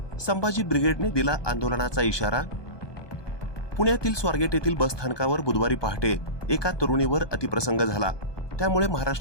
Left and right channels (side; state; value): right; late; 1.2 ms